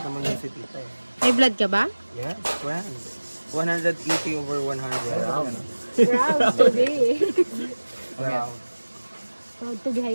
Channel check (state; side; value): inverted; both; correlation -1.00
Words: naman yung si tita eh. May blood ka ba? Yes, friend. 180 over 100. Proud to be. Wow. Proud to be